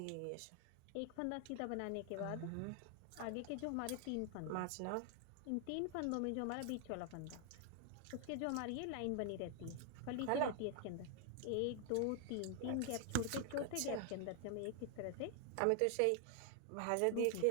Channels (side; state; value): both; different; correlation 0.00